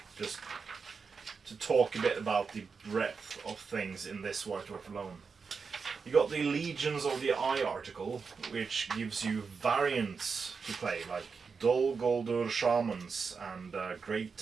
just to talk a bit about the breadth of things in this White Dwarf alone. You got the Legions of the Eye article, which gives you variants to play, like Dol Guldur Shamans and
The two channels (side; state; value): left; quieter; 5.3 dB